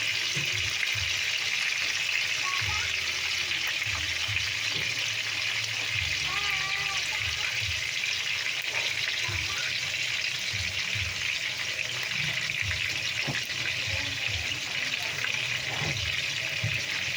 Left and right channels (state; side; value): identical; both; correlation 1.00